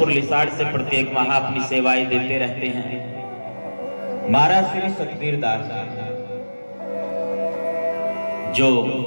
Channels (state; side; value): inverted; both; correlation -1.00